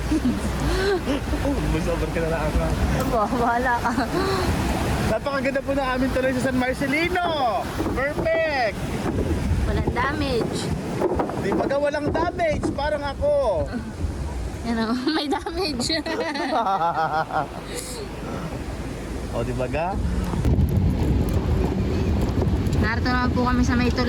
Busoban ka na lang ako. Bahala ka. Napakaganda po ng aming tuloy sa San Marcelino. Perfect! Walang damage. Di ba walang damage? Parang ako. Yan o, may damage. O, di ba ga? Narito naman po kami sa may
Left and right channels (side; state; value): both; identical; correlation 1.00